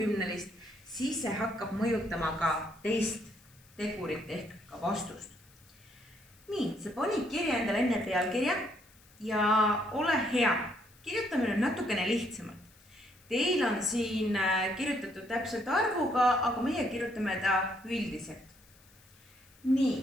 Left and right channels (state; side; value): noise; left; hiss, 28 dB below the sound